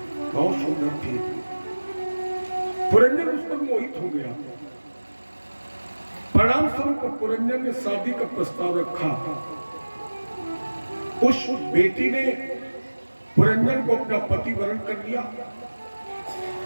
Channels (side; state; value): both; inverted; correlation -1.00